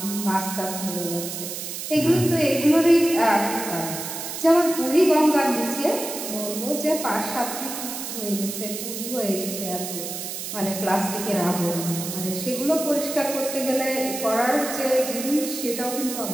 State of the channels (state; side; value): noise; right; hiss, 6 dB below the sound